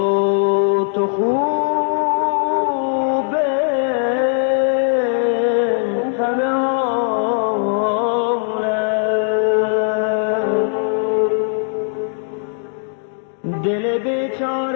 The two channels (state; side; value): silent; right; digital silence